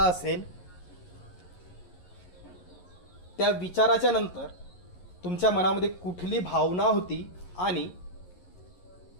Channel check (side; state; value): right; late; 11 ms